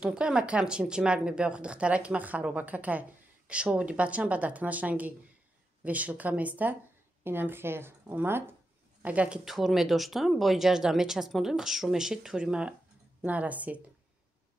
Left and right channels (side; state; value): both; normal; correlation 0.87